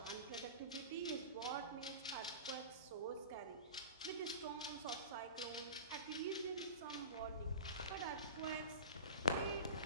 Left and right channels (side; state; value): both; inverted; correlation -0.33